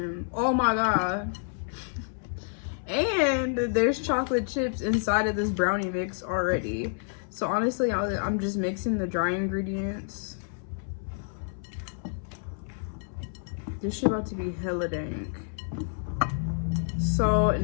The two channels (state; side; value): silent; right; 59 dB below the other